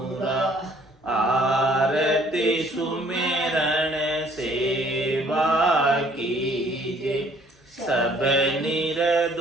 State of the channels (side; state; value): both; normal; correlation 0.60